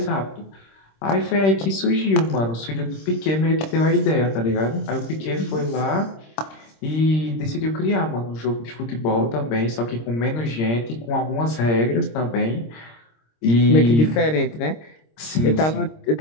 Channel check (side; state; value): right; late; 26 ms